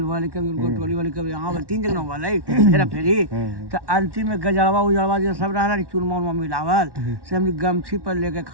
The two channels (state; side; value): late; left; 1.1 ms